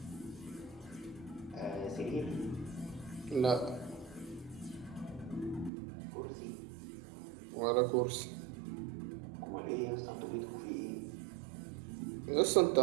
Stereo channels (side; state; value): left; drops out; at 5.7 s